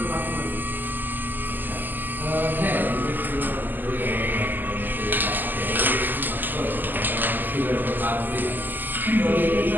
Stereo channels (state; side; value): late; left; 0.089 ms